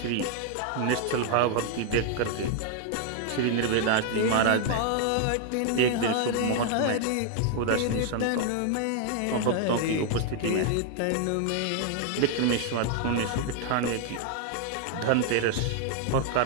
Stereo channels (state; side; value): different; both; correlation 0.00